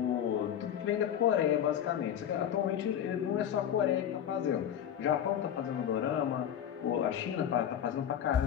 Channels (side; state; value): right; quieter; 9.7 dB